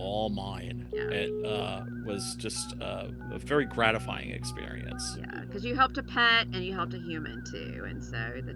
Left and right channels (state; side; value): identical; both; correlation 1.00